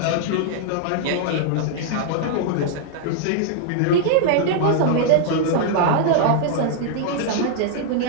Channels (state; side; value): different; both; correlation -0.01